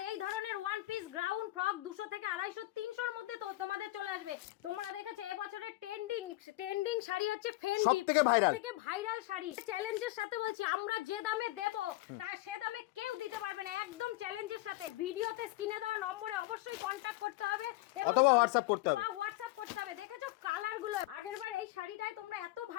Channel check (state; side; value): quieter; right; 18.6 dB